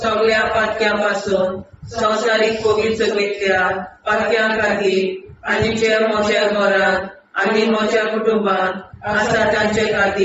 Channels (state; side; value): identical; both; correlation 1.00